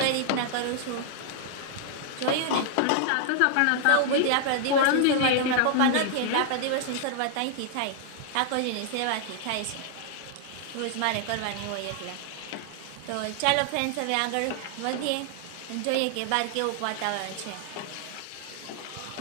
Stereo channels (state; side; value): different; both; correlation -0.01